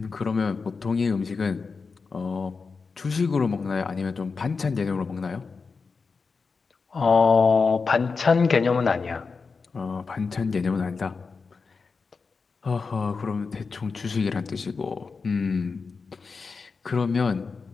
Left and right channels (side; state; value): right; quieter; 4.8 dB